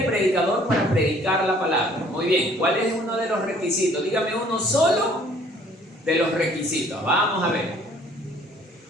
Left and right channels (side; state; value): both; normal; correlation 0.57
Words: predicador para predicar la palabra. Muy bien, ¿cuál es uno de los requisitos? Dígame uno solo de los requisitos. Vamos a ver.